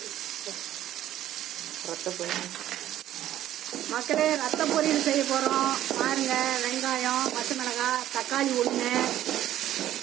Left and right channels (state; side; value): quieter; left; 12.6 dB